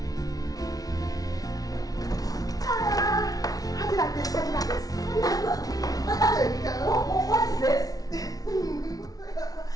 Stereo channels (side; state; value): right; late; 0.18 ms